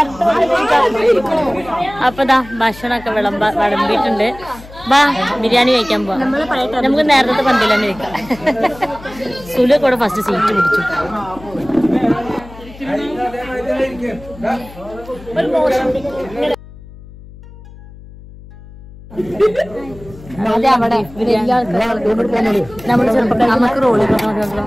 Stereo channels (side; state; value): left; noise; hum, 18 dB below the sound